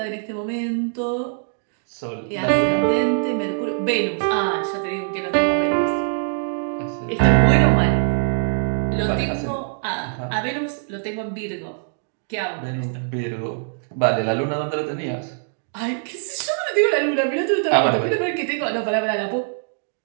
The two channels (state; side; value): silent; left; digital silence